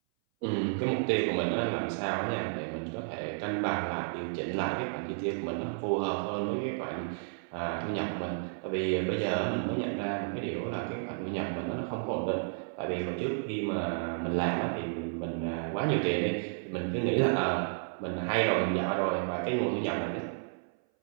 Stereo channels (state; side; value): silent; left; 57 dB below the other